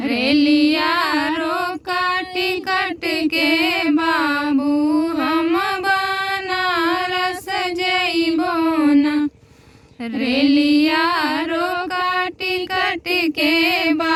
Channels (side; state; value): both; identical; correlation 1.00